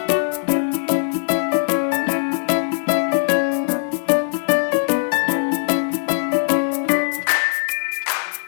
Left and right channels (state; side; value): silent; right; digital silence